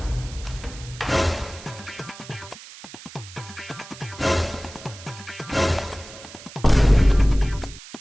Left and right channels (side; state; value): right; noise; hiss, 17 dB below the sound